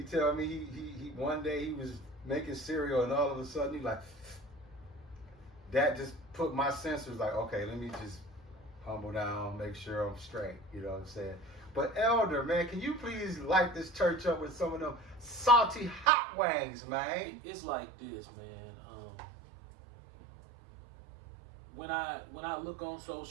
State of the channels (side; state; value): left; drops out; at 16.1 s